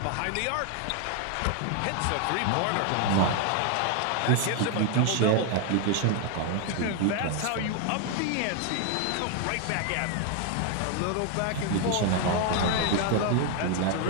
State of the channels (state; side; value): different; both; correlation 0.00